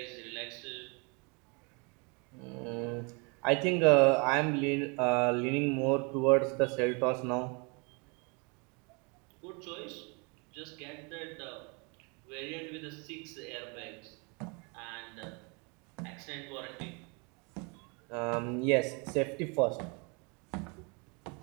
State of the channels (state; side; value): quieter; left; 32.0 dB